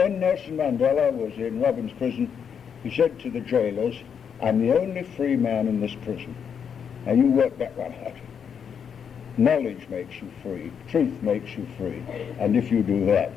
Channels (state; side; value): quieter; right; 7.4 dB